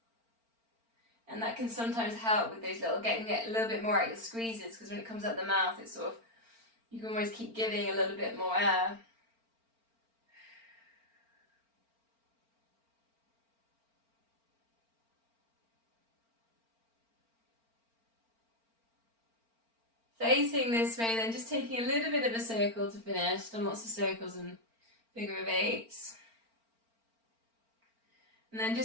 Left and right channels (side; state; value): left; late; 4.4 ms